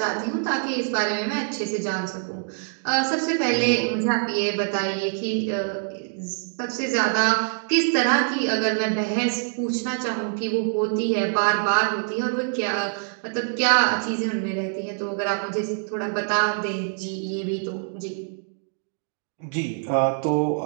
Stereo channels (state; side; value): silent; left; 62 dB below the other